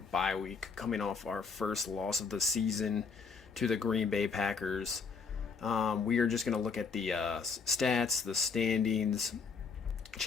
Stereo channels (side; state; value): right; quieter; 5.4 dB